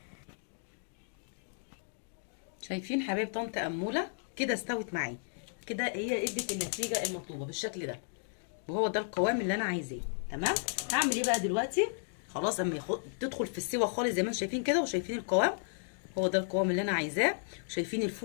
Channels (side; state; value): right; silent; digital silence